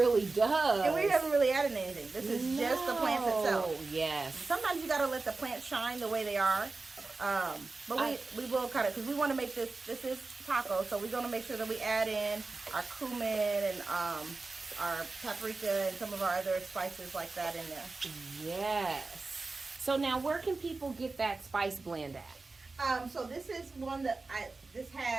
does. And we haven't really added anything. This is just the plants itself. Yes. Sometimes you got to let the plants shine the way they are. But we will kind of, because we want to make this is taco, so we're going to make sure that we add in our cumin and our paprika and some of our other spices like that in there. Yes. So now where can people get that spice blend at? So this is one that this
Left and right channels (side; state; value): left; quieter; 3.7 dB